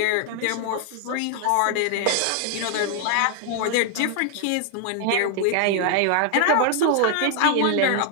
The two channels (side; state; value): both; different; correlation 0.00